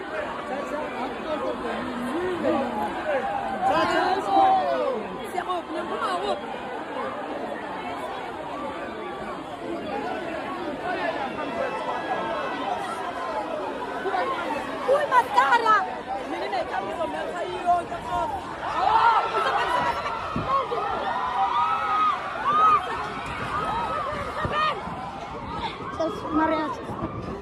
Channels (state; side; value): identical; both; correlation 1.00